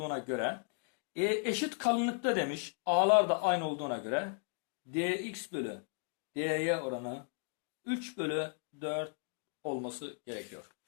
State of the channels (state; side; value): quieter; right; 37.0 dB